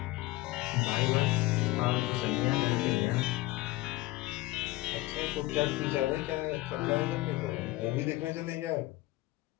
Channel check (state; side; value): quieter; right; 18.9 dB